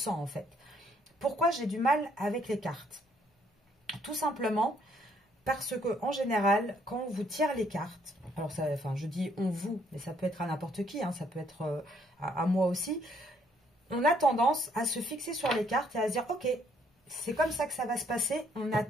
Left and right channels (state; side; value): normal; both; correlation 0.68